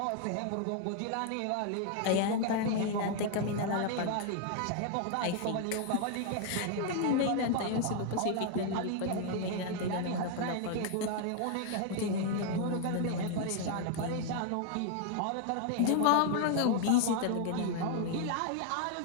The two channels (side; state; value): both; different; correlation 0.00